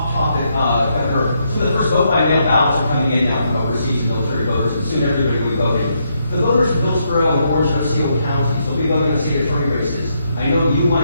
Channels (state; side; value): inverted; both; correlation -0.78